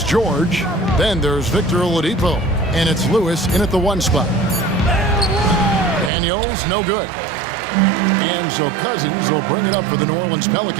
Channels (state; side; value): drops out; left; at 6.1 s